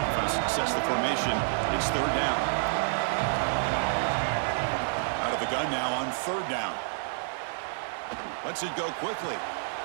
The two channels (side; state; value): left; silent; digital silence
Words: Offense sets the formation. It's 3rd down. Out of the gun now on 3rd down. Lets it go quickly.